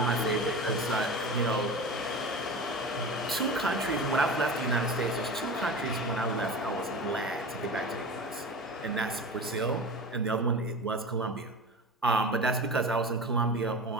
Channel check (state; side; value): normal; both; correlation 0.31